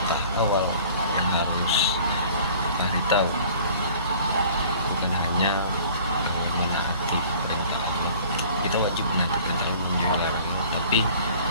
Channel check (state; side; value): inverted; both; correlation -0.49